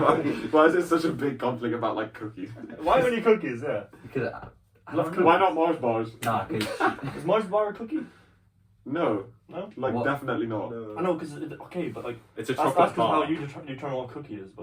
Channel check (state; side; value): identical; both; correlation 1.00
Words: is it such a big conflict about like cookies? Why only cookies? Yeah. because I Love don't cookies. know. Why not Mars bars? Nah, because Is Mars bar a cookie? No, No. like What? definitely not. I know, because okay, but like It's a that's chocolate how bar. you determine what a cookie is.